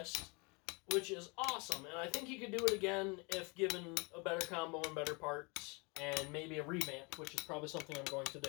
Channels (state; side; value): quieter; right; 29.7 dB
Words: which is awesome, and I think he could do it again if given a better combo and better parts, and maybe a revamp, which is probably something I'm going to